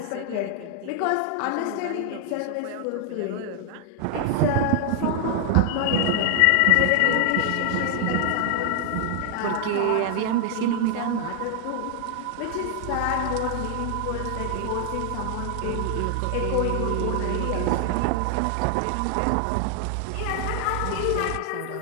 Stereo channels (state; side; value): different; both; correlation 0.00